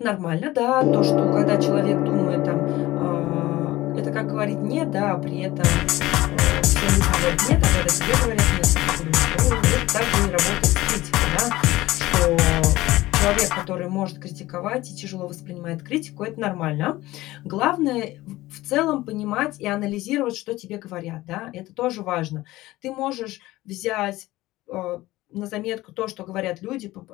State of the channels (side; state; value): right; quieter; 17.6 dB